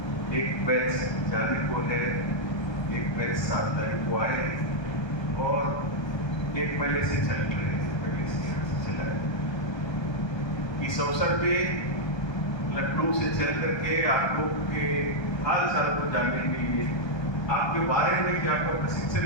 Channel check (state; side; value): late; right; 1.3 ms